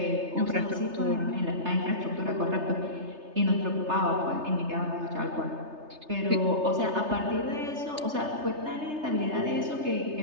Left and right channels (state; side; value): late; left; 3.3 ms